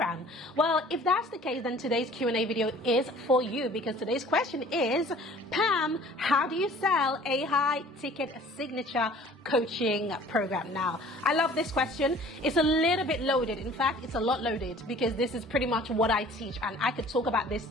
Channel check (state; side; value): normal; both; correlation 0.50